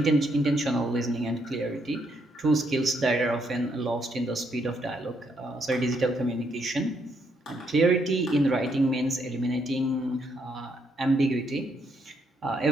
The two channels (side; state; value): both; normal; correlation 0.74